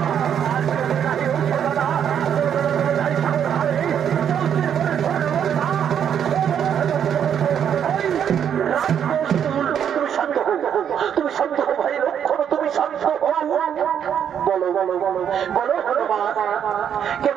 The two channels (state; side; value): quieter; left; 8.7 dB